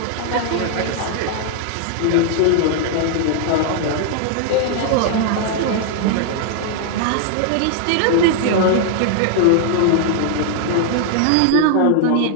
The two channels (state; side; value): different; both; correlation 0.00